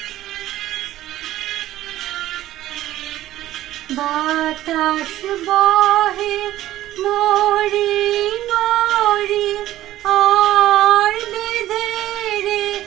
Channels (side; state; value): left; quieter; 14.3 dB